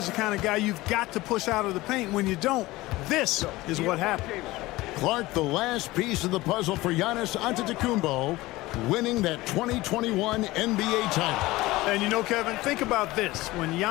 the kind of guy you've got to push out of the paint. When you don't, this is what happens. Clark, the last piece of the puzzle for Giannis Antetokounmpo, winning that 2021 NBA title. And you know, Kevin, think about this. When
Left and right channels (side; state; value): right; quieter; 19.2 dB